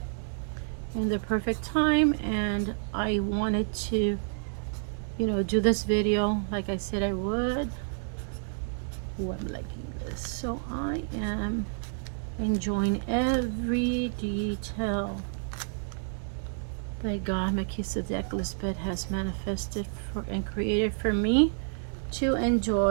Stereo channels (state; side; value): silent; left; digital silence